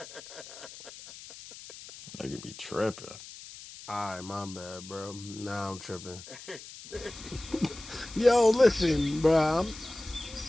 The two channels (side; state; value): left; noise; hiss, 15 dB below the sound